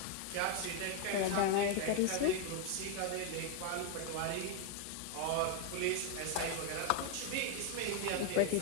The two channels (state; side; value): different; both; correlation 0.01